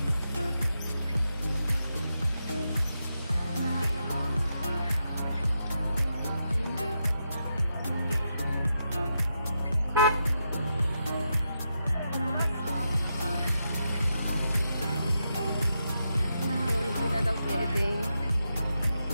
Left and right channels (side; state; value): both; inverted; correlation -0.84